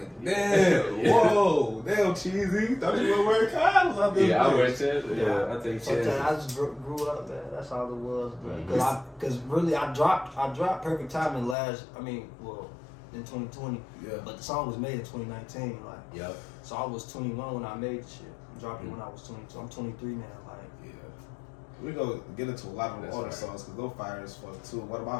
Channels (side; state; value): right; drops out; at 11.6 s